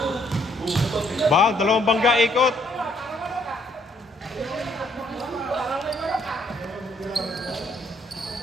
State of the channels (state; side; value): normal; both; correlation 0.67